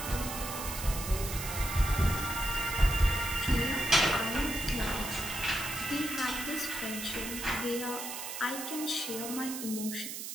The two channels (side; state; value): right; noise; hiss, 7 dB below the sound